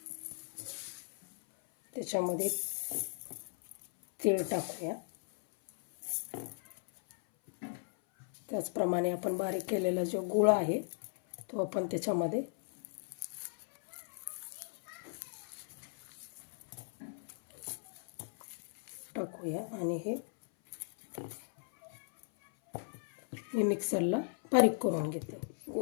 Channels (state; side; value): silent; right; 53 dB below the other